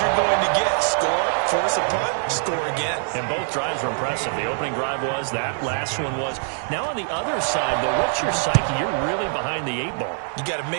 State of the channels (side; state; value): left; silent; 62 dB below the other